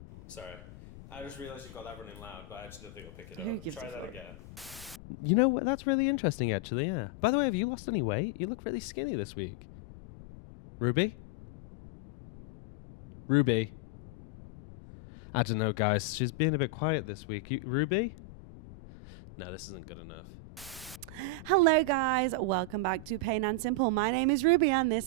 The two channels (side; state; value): left; noise; rumble, 17 dB below the sound